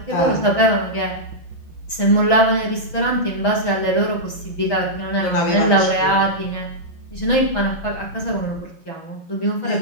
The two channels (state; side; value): late; right; 6.2 ms